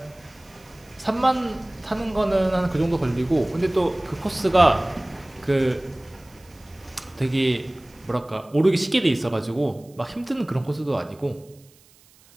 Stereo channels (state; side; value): noise; right; hiss, 28 dB below the sound